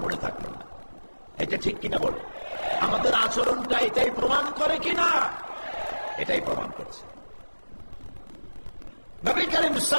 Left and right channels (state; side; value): inverted; both; correlation -1.00